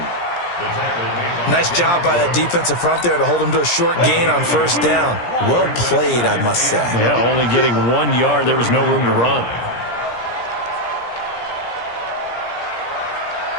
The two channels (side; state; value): right; late; 17 ms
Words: Nice job by that defensive front there to hold him to a short gain on 1st down. Well played, I must say. Yeah, only getting 1 yard. There was no room to run.